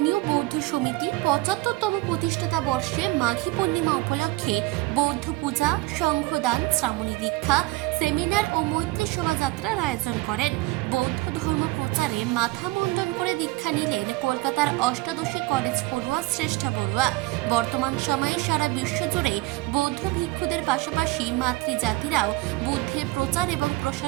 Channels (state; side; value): quieter; left; 20.3 dB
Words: বৌদ্ধ সমিতি ৭৫তম প্রতিষ্ঠাতা বর্ষে মাঘী পূর্ণিমা উপলক্ষে বৌদ্ধ পূজা, সংঘদান, শ্রামণী দীক্ষা, সেমিনার ও মৈত্রী শোভাযাত্রার আয়োজন করেন। বৌদ্ধ ধর্ম প্রচারে মাথা মুন্ডন করে দীক্ষা নিলেন কলকাতার অষ্টাদশী কলেজ পড়ুয়া শ্রেষ্ঠা বড়ুয়া। বর্তমান সময়ে সারা বিশ্বজুড়ে বৌদ্ধ ভিক্ষুদের পাশাপাশি মাতৃজাতিরাও বুদ্ধের প্রচার এবং